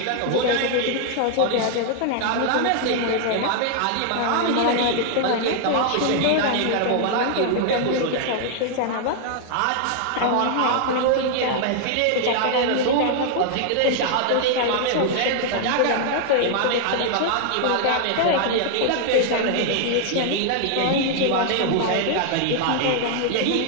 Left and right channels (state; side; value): different; both; correlation 0.00